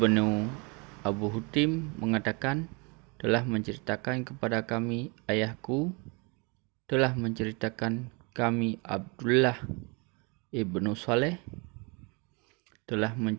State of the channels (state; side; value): quieter; left; 30.9 dB